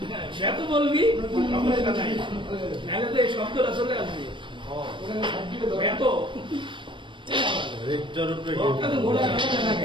এত বলবি নাহলে তো এই শব্দটা চলে আসবে এত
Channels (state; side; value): late; left; 0.24 ms